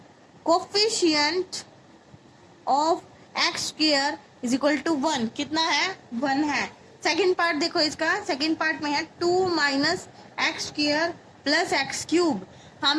coefficient of x square is equal to 1। कितना है 1 है। सेकंड पार्ट देखो, इसका सेकंड पार्ट में है 2 minus x square plus x cube.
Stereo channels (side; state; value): both; identical; correlation 1.00